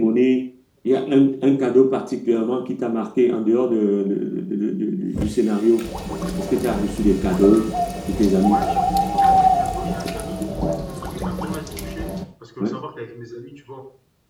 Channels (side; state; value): both; identical; correlation 1.00